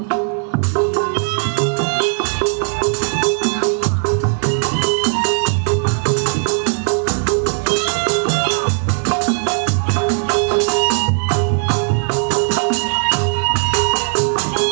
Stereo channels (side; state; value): left; silent; digital silence